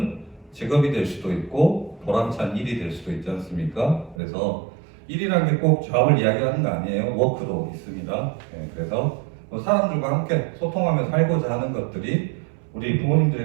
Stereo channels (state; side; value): drops out; left; at 4.2 s